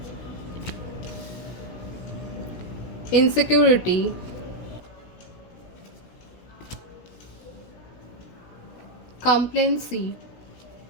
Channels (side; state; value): right; late; 16 ms